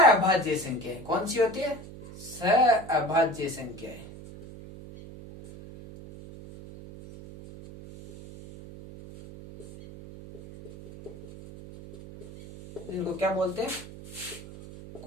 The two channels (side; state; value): right; noise; hum, 15 dB below the sound